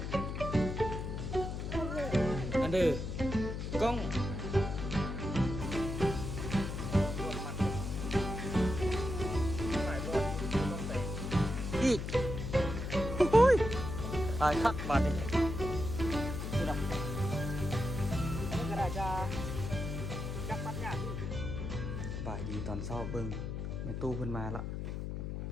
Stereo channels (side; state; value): left; noise; hum, 4 dB below the sound